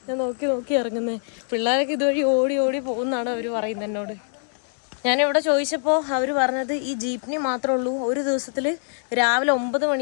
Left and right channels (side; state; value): right; silent; digital silence